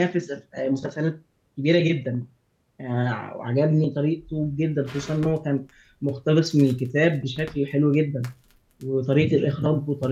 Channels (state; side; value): identical; both; correlation 1.00